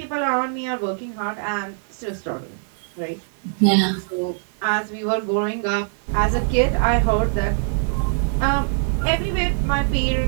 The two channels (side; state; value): left; silent; digital silence